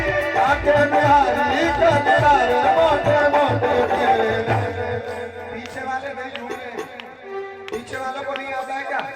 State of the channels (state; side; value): identical; both; correlation 1.00